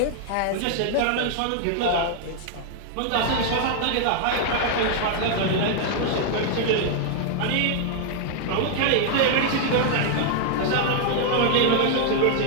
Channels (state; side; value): different; both; correlation 0.00